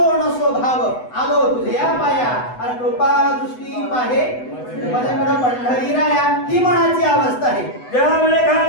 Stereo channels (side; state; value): right; late; 8.0 ms